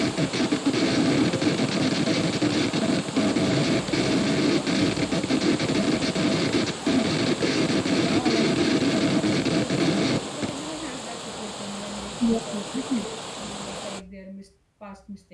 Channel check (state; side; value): identical; both; correlation 1.00